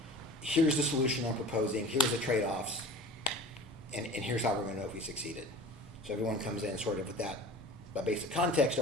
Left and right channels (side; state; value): both; normal; correlation 0.39